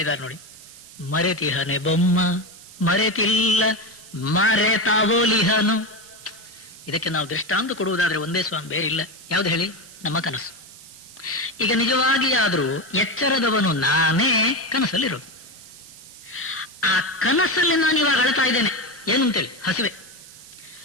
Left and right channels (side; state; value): right; noise; hiss, 19 dB below the sound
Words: ನೋಡಿ. ಮರೆತಿಹನೆ ಬೊಮ್ಮ ಮರೆತಿಲ್ಲ ಮರೆತಾವೋಲಿಹನು. ಇದಕ್ಕೆ ನಾವು ದೃಷ್ಟಾಂತ ಕೊಡುವುದಾದ್ರೆ ಒಂದೇ ಸ್ವಾಮಿ, ಬೇರಿಲ್ಲ. ಯಾವ್ದು ಹೇಳಿ? ನಮ್ಮ ಕನಸು. ಈಗ ನಿಜವಾಗಿ ಆದ್ರೂ ಎಚ್ಚರದವನು ನಾನೇ ಕನಸಲ್ಲಿರೋದು. ಆ ಕನಸಲ್ಲಿ ನಾನು ಇವಾಗ ಅಳ್ತಾ ಇದ್ದೇನೆ. ಏನು ಅಂತೇಳಿ? ಹಸಿವೆ.